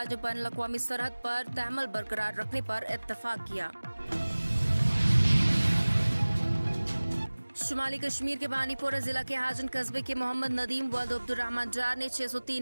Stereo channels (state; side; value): inverted; both; correlation -1.00